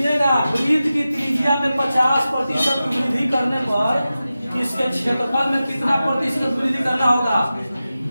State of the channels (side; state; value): both; inverted; correlation -0.94